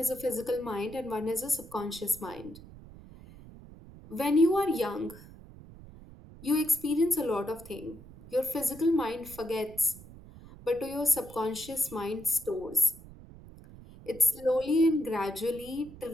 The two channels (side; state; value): right; noise; rumble, 18 dB below the sound